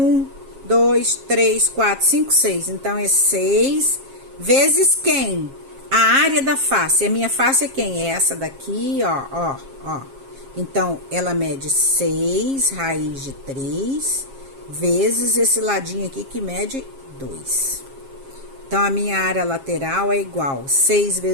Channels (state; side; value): late; left; 7.4 ms